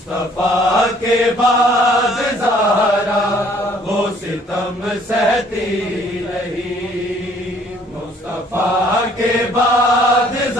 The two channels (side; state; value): both; normal; correlation 0.60